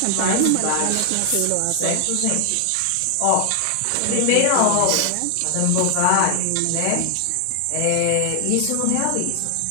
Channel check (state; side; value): different; both; correlation 0.00